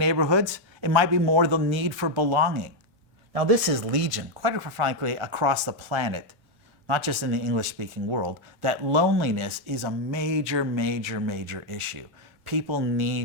it might be more the need for belonging. Now this is legion, quite frankly, across the planet, not just in the English-speaking world, that loneliness is a major, major, major issue. People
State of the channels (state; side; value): normal; both; correlation 0.02